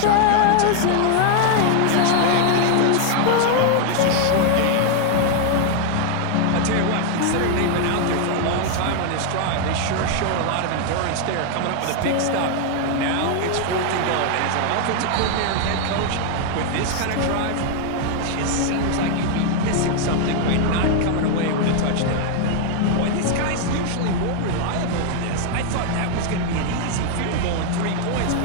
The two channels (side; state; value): both; different; correlation 0.00